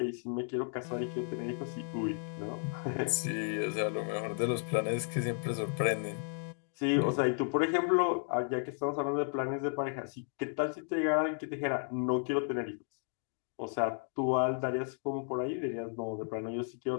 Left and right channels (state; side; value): silent; right; 55 dB below the other